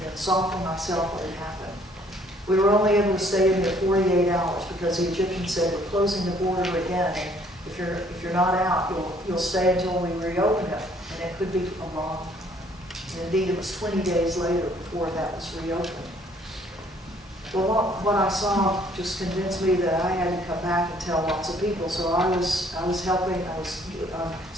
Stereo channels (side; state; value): both; normal; correlation 0.61